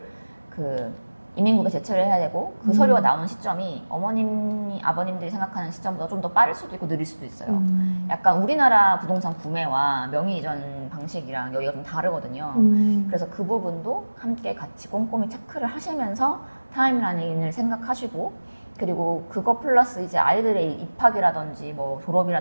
그 이민국에 제출을 해야 되고 그 서류가 나오는 시점이 어머님이 아버님들이 생각하는 시점보다 좀 더 빠를 수도 있고 느릴 수도 있어요. 약간 우리나라 부동산 구매와 명의 이전 방식이랑 여기가 좀 다르거든요. 그래서 그 부분도 함께 같이 꼼꼼히 체크를 하시면서 타임라인을 생각하시고 그리고 그거 플러스 이제 아이들의 입학이라든지 뭐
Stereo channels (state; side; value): inverted; both; correlation -1.00